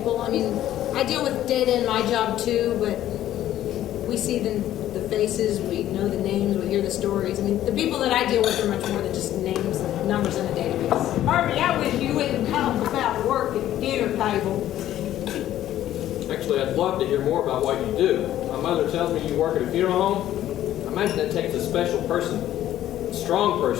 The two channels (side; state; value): right; quieter; 12.7 dB